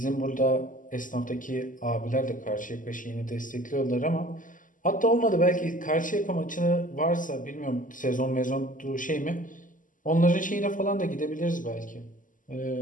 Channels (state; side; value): late; right; 0.38 ms